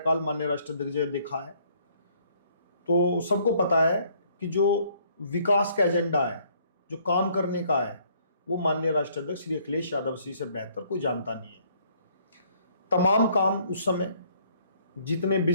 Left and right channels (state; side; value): inverted; both; correlation -0.64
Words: माननीय राष्ट्राध्यक्ष जी ने देखा है। तो सबको पता है कि जो विकास का एजेंडा है, जो काम करने का है, वो माननीय राष्ट्राध्यक्ष श्री अखिलेश यादव जी से बेहतर कोई जानता नहीं है। तमाम काम उस समय जितने